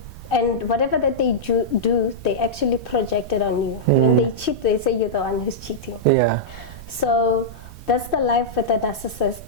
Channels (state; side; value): noise; right; rumble, 15 dB below the sound